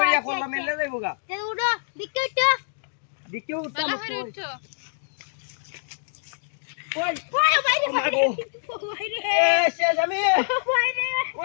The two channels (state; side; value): silent; right; digital silence